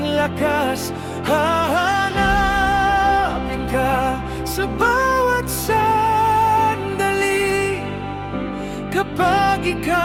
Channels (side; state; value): both; identical; correlation 1.00